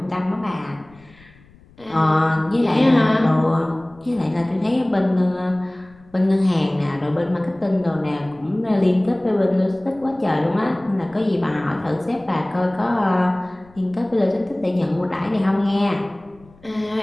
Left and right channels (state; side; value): noise; left; rumble, 27 dB below the sound